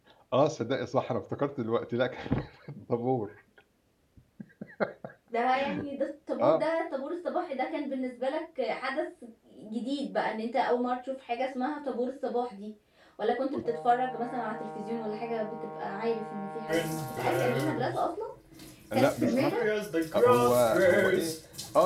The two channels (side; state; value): both; identical; correlation 1.00